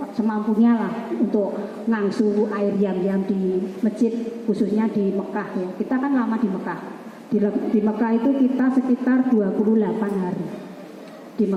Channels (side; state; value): both; identical; correlation 1.00